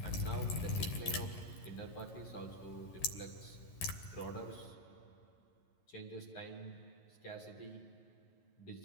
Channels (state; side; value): late; right; 11 ms